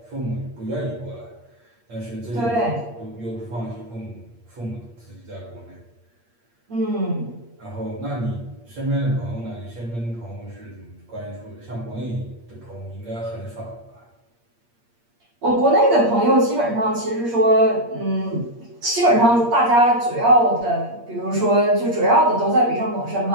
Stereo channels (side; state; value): left; late; 8.5 ms